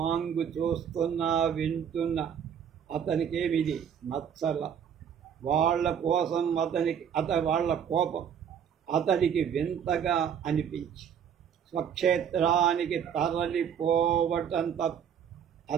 చూస్తున్నా వింటున్న అతనికేమిది నచ్చల. వాళ్ళ కోసం వాళ్ళ కోపం అతడికి వింతగా అనిపించి స్వక్షేత్రానికి తరలిపోవటం తప్ప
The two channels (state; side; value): quieter; left; 8.2 dB